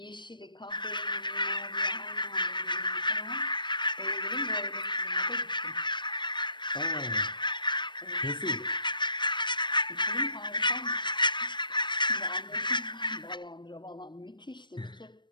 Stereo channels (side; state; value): right; late; 0.22 ms